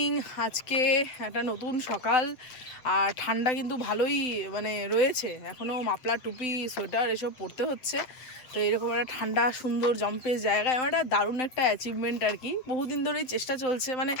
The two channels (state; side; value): late; right; 7.9 ms